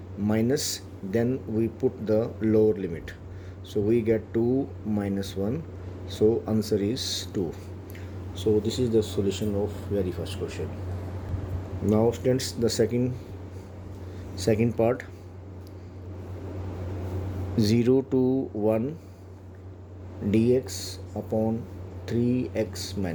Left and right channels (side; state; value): both; identical; correlation 1.00